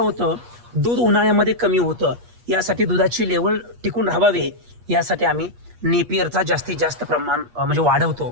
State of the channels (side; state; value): left; late; 8.4 ms